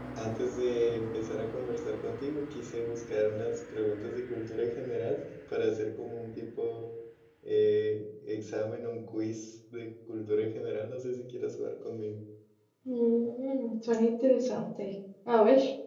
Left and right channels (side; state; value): both; identical; correlation 1.00